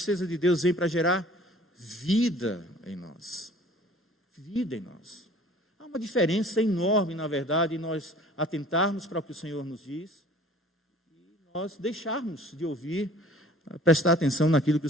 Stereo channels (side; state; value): both; normal; correlation 0.50